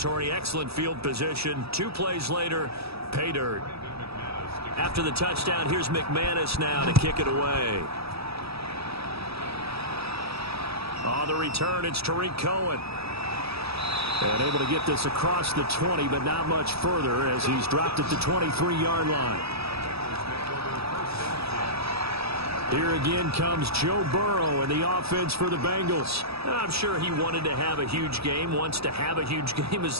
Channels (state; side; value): late; left; 0.77 ms